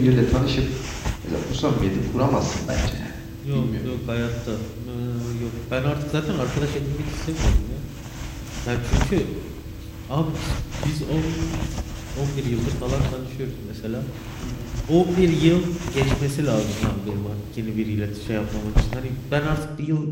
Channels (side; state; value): both; identical; correlation 1.00